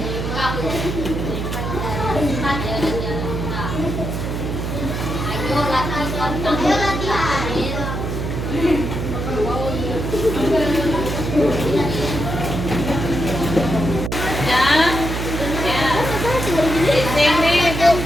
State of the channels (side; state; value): right; noise; hum, 3 dB below the sound